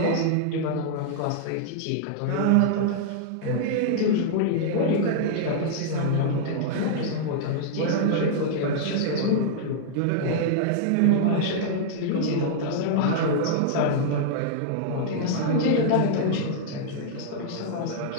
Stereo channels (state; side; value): different; both; correlation -0.01